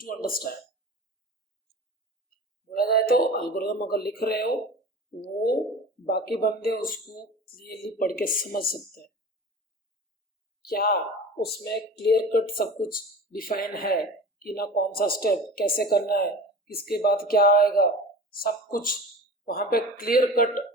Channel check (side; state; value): both; normal; correlation 0.36